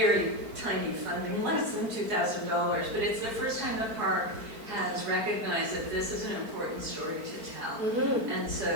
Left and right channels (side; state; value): left; late; 4.5 ms